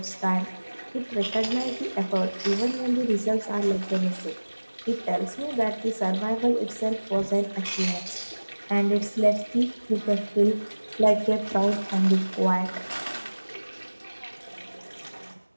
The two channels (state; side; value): inverted; both; correlation -1.00